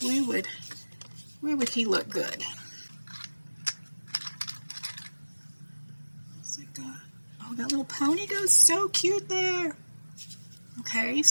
where would he look good? Oh, that little pony goes so cute there. Okay,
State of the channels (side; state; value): both; inverted; correlation -1.00